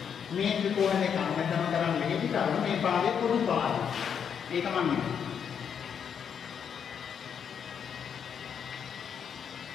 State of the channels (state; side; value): quieter; right; 7.6 dB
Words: මේ ත්‍රිකෝණ දෙක අමතන කරන් මෙහෙදි කරුණ මේ පාදේ පොදු පාදය. ඒක මම